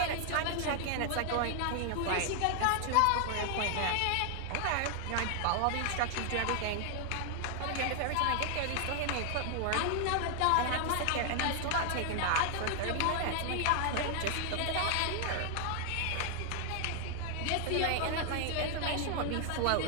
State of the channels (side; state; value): both; different; correlation 0.00